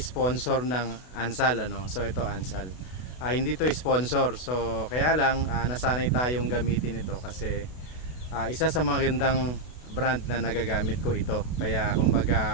ng Ansal, ano? So, ito Ansal. Hindi to sponsor. So, kaya lang nasanay tayong gamitin ito kasi isa sa magandang brand na nagagamit ko ito. Kaya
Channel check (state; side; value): late; right; 32 ms